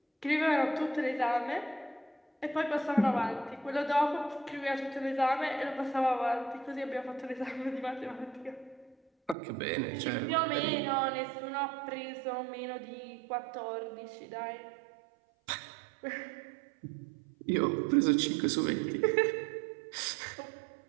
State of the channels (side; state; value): left; drops out; at 9.3 s